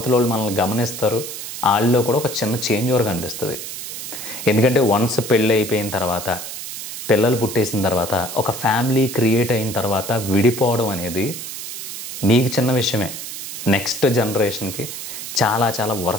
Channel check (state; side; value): noise; right; hiss, 8 dB below the sound